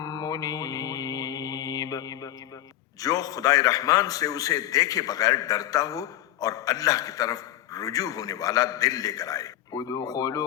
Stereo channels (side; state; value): right; quieter; 13.4 dB